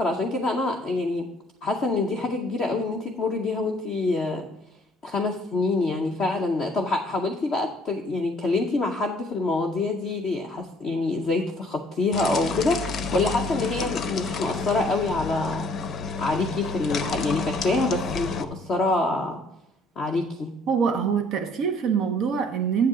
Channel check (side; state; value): both; normal; correlation 0.60